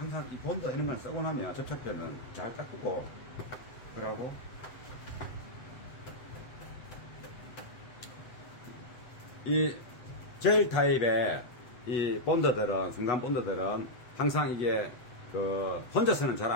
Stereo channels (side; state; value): right; late; 7.9 ms